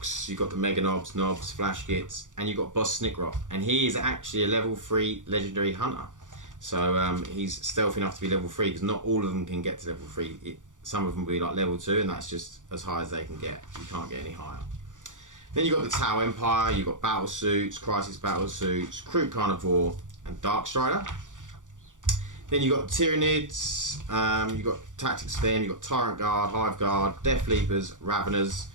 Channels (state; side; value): late; left; 0.87 ms